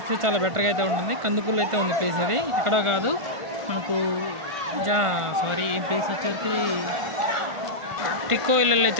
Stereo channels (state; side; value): late; left; 1.5 ms